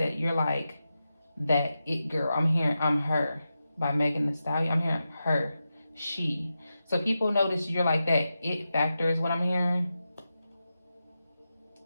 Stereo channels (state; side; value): inverted; both; correlation -0.90